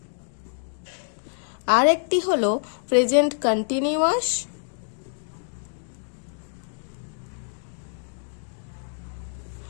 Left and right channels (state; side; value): silent; right; digital silence